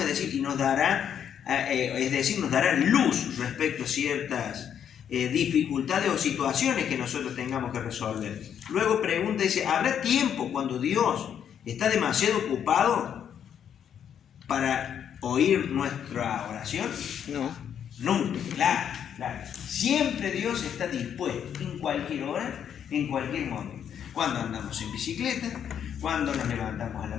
es decir, y nos dará luz respecto a ciertas dificultades o situaciones que nosotros tengamos que resolver. Luego pregunta, dice, ¿habrá tiempo cuando Dios está demasiado ocupado para oír nuestra oración? No. Nunca, claro. Siempre Dios está dispuesto, en cualquier hora, en cualquier momento. Cuando andamos en bicicleta, cuando nos levantamos a la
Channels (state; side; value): quieter; right; 8.7 dB